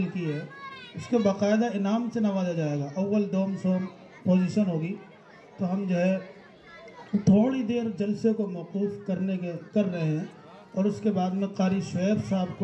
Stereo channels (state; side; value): identical; both; correlation 1.00